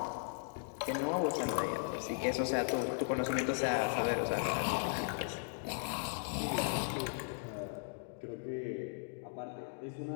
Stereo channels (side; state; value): right; silent; digital silence